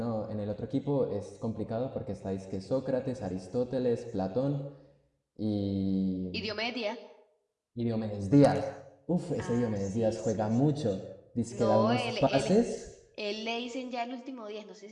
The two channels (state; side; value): identical; both; correlation 1.00